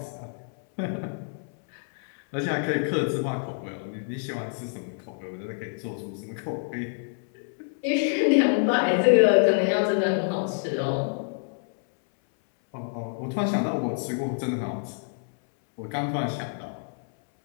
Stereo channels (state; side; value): silent; right; 60 dB below the other